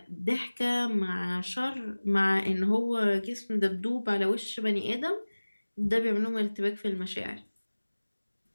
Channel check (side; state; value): both; inverted; correlation -1.00